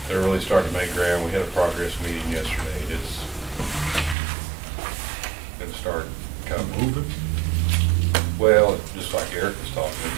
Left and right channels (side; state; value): left; drops out; at 4.2 s